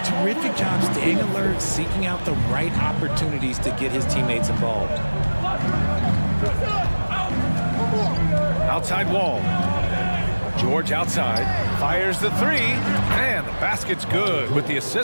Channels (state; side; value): inverted; both; correlation -1.00